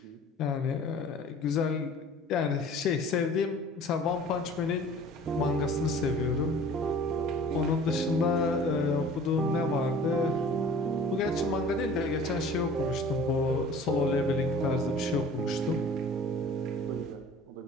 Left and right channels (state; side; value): normal; both; correlation 0.46